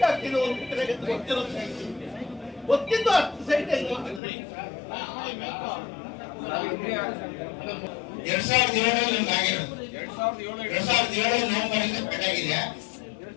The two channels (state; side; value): drops out; right; at 4.2 s